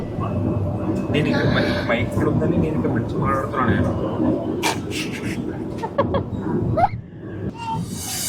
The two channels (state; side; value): identical; both; correlation 1.00